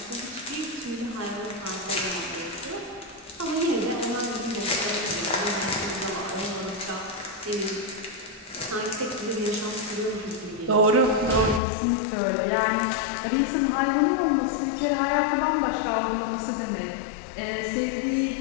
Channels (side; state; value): right; drops out; at 11.6 s